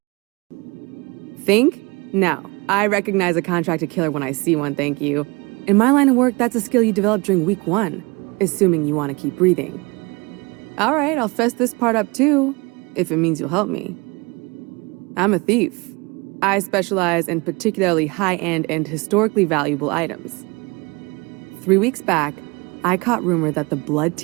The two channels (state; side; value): quieter; left; 26.5 dB